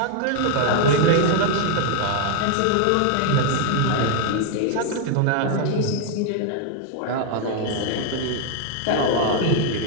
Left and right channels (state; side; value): different; both; correlation 0.00